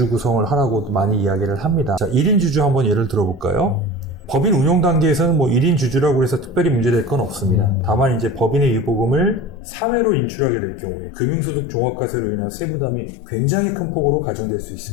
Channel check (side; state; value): right; drops out; at 9.6 s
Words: 구성을 하라고 많이 이야기를 합니다. 자, 1인 주주 한번 예를 들어볼까요? 법인 운영 단계에서는 뭐 1인 주주라고 해서 특별히 문제될 건 없습니다. 다만 이제 법인의 유보금을 사회로 인출하게 될 경우에 금융소득 종합과세로 인한 세부담이 굉장히 큰 폭으로 가중될 수